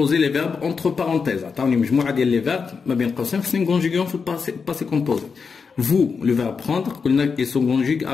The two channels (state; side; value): quieter; right; 5.4 dB